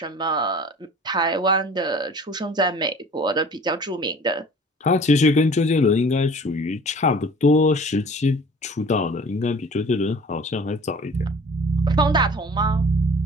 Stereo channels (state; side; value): normal; both; correlation 0.46